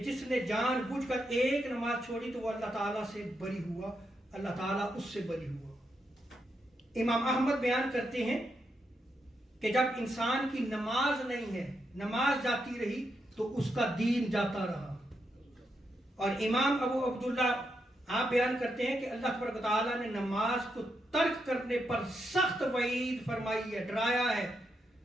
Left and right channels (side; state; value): both; normal; correlation 0.82